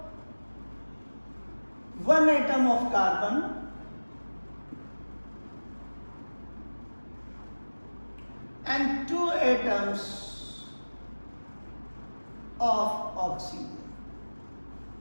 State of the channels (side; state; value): both; inverted; correlation -1.00